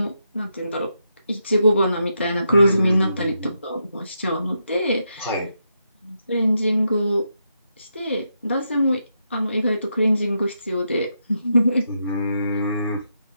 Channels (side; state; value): both; inverted; correlation -0.83